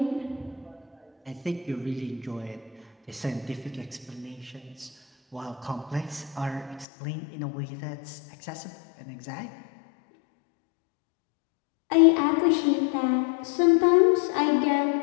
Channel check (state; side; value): drops out; right; at 6.9 s